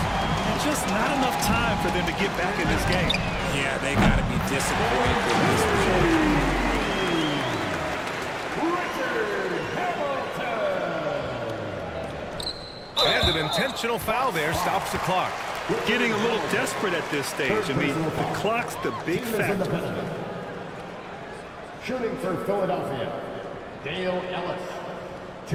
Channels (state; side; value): identical; both; correlation 1.00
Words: Just not enough time for them to get back in this game. Yeah, they got to be disappointed with this result. And an intentional foul there stops the clock. Getting a little desperate at this stage. I mean, the clock's the big factor. Shooting for Philadelphia, Dale Ellis,